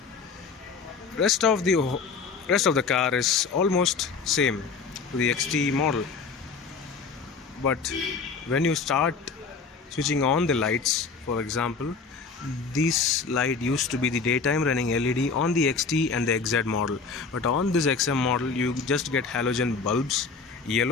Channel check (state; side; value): quieter; right; 5.0 dB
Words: rest of the car is almost same to the XT model. But when you start switching on the lights, for example, this light used to be the daytime running LED on the XT and the XZ model, but on this XM model you just get halogen bulbs,